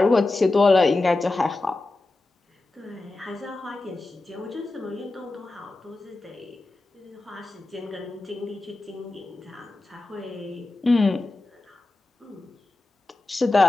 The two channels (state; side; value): quieter; right; 3.1 dB